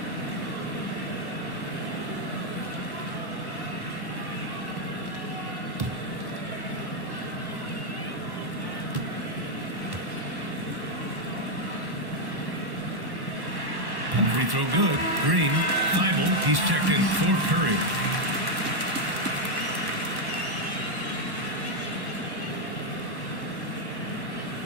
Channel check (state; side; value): late; left; 1.1 ms